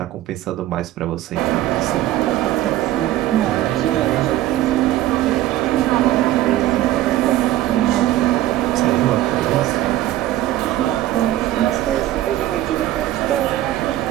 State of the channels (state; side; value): quieter; left; 14.4 dB